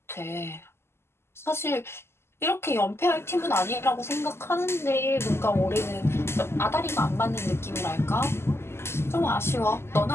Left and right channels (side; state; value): right; late; 0.12 ms